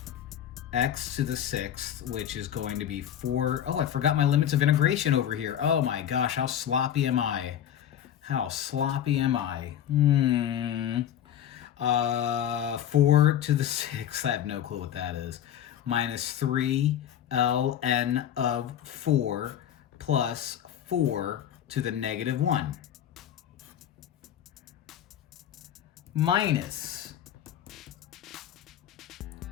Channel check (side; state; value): right; quieter; 10.3 dB